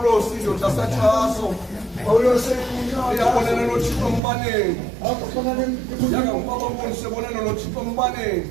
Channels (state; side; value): drops out; left; at 4.2 s